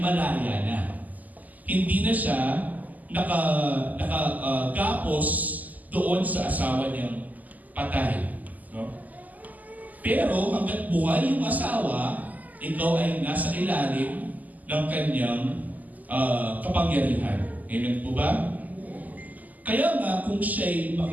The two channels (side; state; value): left; late; 0.080 ms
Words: na. Hindi na siya nakagapos doon sa asawa niyang patay. No? Pero hanggat buhay yung asawa, ikaw ay nasa ilalim ng kanyang kapangyarihan. Amen po ba? Kaya nga kung siya'y